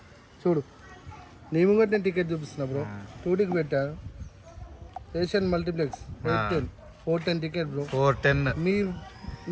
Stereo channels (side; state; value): both; identical; correlation 1.00